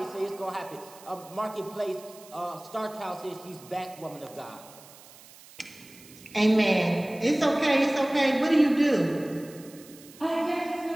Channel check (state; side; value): noise; right; hiss, 21 dB below the sound